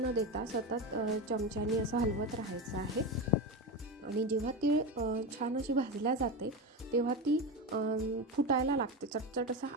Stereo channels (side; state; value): both; normal; correlation 0.19